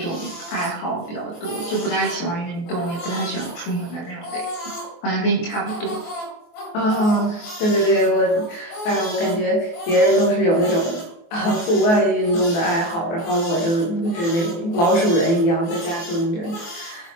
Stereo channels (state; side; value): late; right; 24 ms